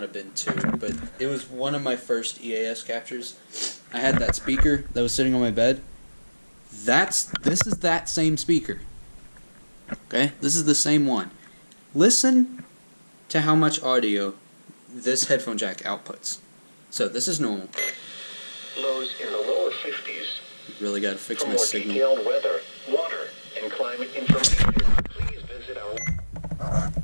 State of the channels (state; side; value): inverted; both; correlation -1.00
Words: have been 2, but it was one of my first EAS captures. I had that speaker that was sitting on my bed. This is that same speaker. Okay? This is the same one. Listen to how much audio this headphone jack outputs. So this is normal. Lows in the lower 50s. Really got to fix For my more signal. detailed weather, water, and climate information, please visit our...